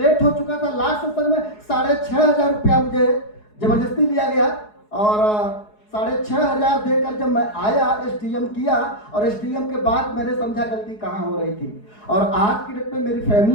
हो चुका था। लास्ट सेशन में 6,500 रुपया मुझे जबरदस्ती लिया गया और 6,500 देकर जब मैं आया एसटीएम किया और एसटीएम के बाद मैंने समझा गलती कहाँ हो रही थी। और आज की डेट में मेरी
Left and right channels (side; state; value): right; late; 4.7 ms